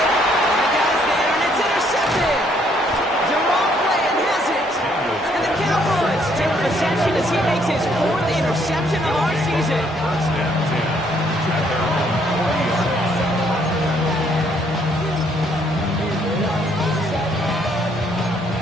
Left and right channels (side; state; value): both; normal; correlation 0.68